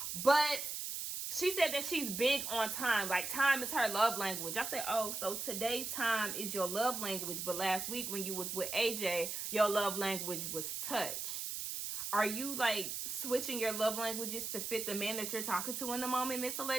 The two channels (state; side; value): noise; right; hiss, 4 dB below the sound